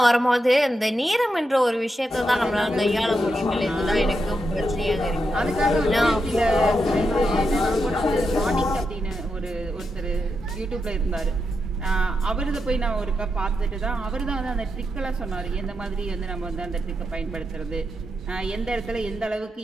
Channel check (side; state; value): both; normal; correlation 0.85